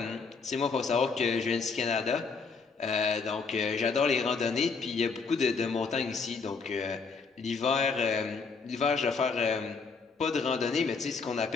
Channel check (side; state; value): right; quieter; 4.9 dB